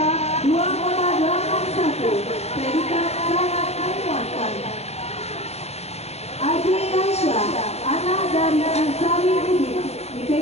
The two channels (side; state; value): right; late; 0.31 ms